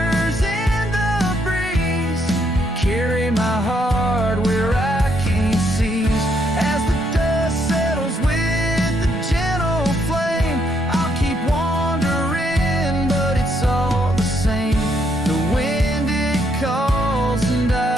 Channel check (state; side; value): normal; both; correlation 0.73